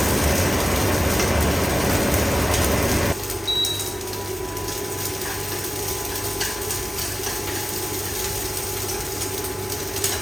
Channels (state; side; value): normal; both; correlation 0.95